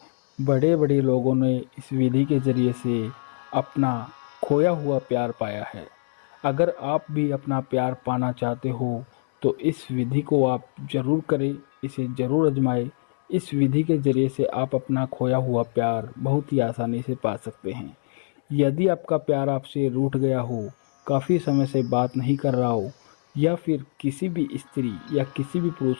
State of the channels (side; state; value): right; silent; 62 dB below the other